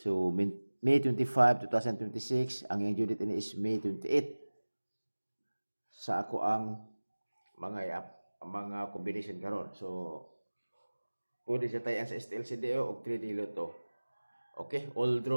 May 25, 2026. Ang iyong due date ini is May 28. Sa ako ang mga combination karon. So, pwede siya tayo sa STLCDO o 3D Lotto. Okay, all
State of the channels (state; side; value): inverted; both; correlation -1.00